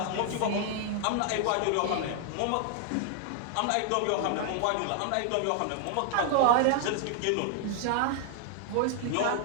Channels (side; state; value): both; different; correlation 0.00